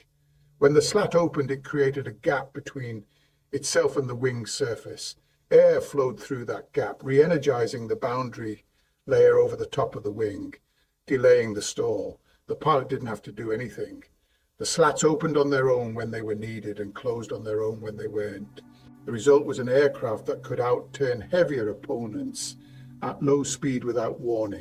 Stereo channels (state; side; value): identical; both; correlation 1.00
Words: When the slat opened, it created a gap between itself and the wing surface. Air flowed through that gap, re-energizing the boundary layer over the top of the wing, delaying the stall. The pilot didn't have to do anything. The slats opened on their own when they were needed and closed on their own when they weren't. The result was an aircraft that could outturn heavier opponents at low speed without